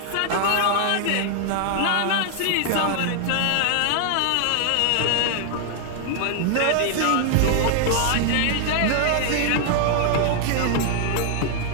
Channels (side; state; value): both; different; correlation 0.00